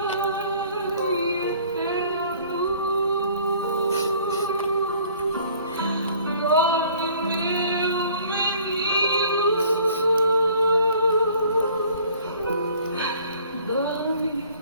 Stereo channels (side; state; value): both; inverted; correlation -0.55